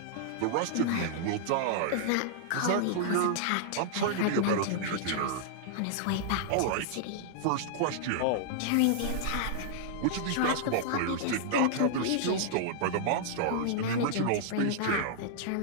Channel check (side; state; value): both; different; correlation -0.01